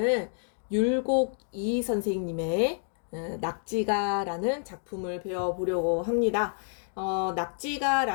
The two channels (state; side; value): silent; right; digital silence